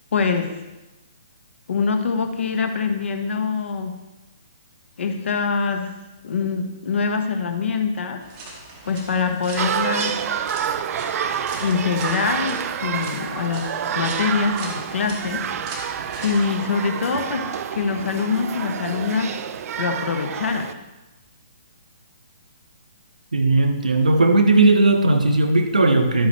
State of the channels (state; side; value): inverted; both; correlation -0.57